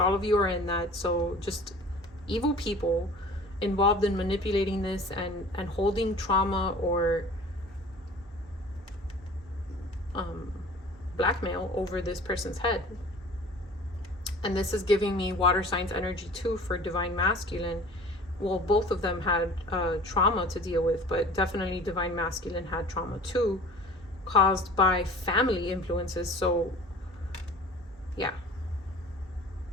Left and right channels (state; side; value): normal; both; correlation 0.44